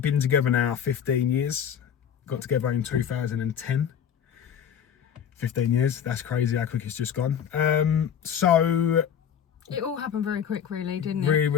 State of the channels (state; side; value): quieter; right; 8.5 dB